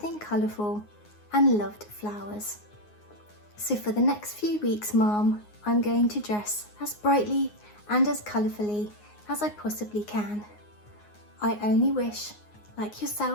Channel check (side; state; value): right; late; 9.6 ms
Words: colourful and loved flowers. So for the next few weeks, Mom, I'm going to dress as brightly and as colourfully as I possibly can. I only wish, like